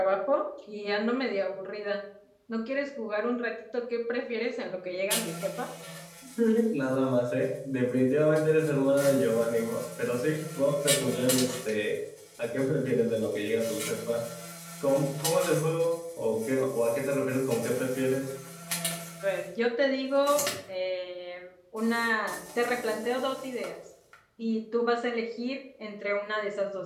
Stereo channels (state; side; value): identical; both; correlation 1.00